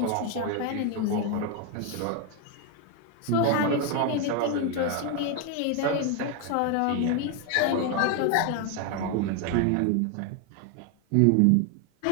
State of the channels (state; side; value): different; both; correlation 0.01